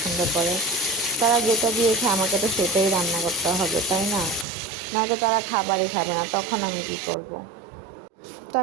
করে। তারা যেটা দিয়ে খায় আমাকে তো সেটাই রান্না করতে হবে, তাই না? নয়তো তারা খাবারই খাবে না, তখন আমি কী করব? তো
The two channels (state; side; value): drops out; left; at 4.5 s